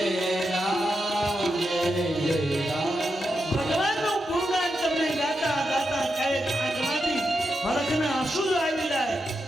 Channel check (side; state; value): both; normal; correlation 0.86